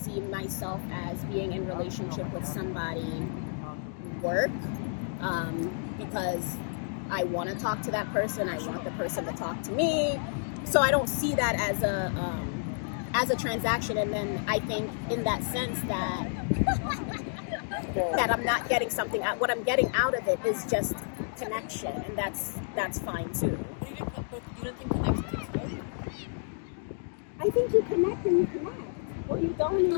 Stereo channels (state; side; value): silent; right; digital silence